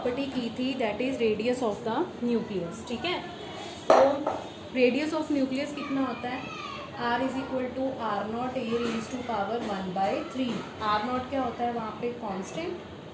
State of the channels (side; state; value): both; identical; correlation 1.00